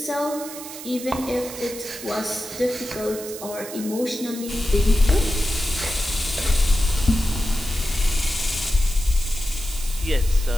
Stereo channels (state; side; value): noise; right; hiss, 12 dB below the sound